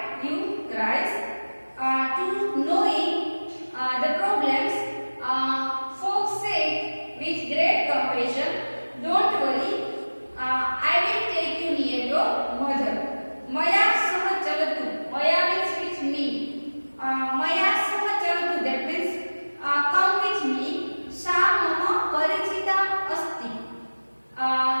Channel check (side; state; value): both; inverted; correlation -1.00